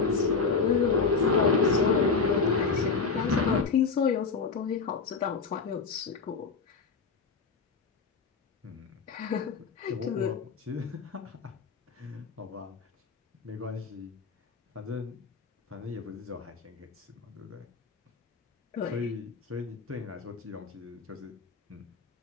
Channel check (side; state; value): right; quieter; 4.8 dB